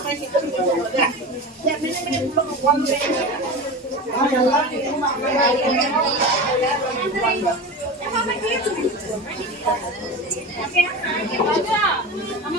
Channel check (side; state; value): both; normal; correlation 0.28